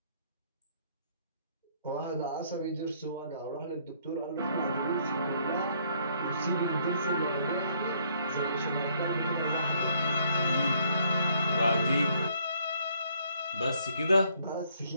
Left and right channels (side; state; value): both; inverted; correlation -0.66